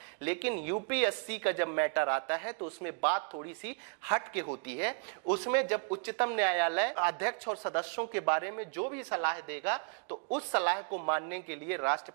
लेकिन यूपीएससी का जब मैटर आता है तो उसमें बात थोड़ी सी हट के होती है। उसमें जब उच्चतम न्यायालय अध्यक्ष और सदस्यों के बारे में जो भी सलाह देगा तो उस सलाह को मानने के लिए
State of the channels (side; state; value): left; quieter; 36.5 dB